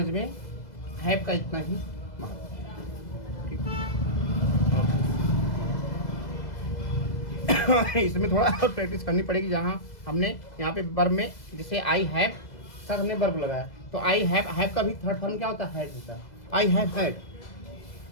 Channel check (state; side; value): late; right; 2.0 ms